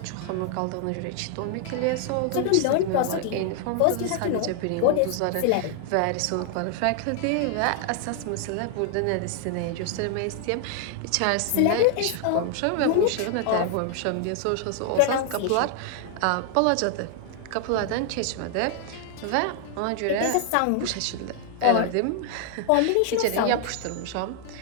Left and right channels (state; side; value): different; both; correlation 0.00